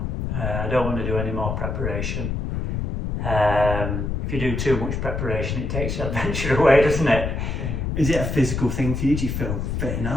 I don't want to do any more preparation. If you do too much preparation, it takes the adventure away, doesn't it? Is it a physical thing for you? Do you feel fit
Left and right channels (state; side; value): noise; left; rumble, 2 dB below the sound